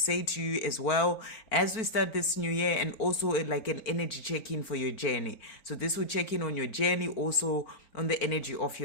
to you as well as we start this new year, and also like an energy check-in for your journey. So this will check in on your journey, also on the energy of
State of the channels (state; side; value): late; right; 4.4 ms